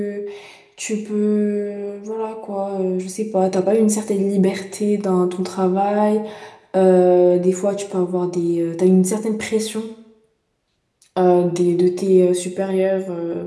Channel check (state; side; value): identical; both; correlation 1.00